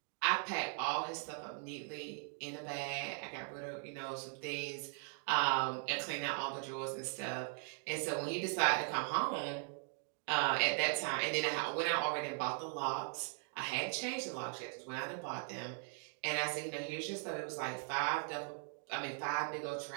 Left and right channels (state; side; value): silent; left; 51 dB below the other